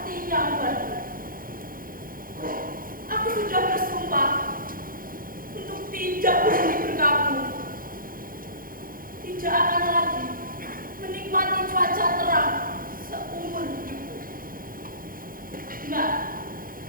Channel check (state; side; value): late; left; 0.41 ms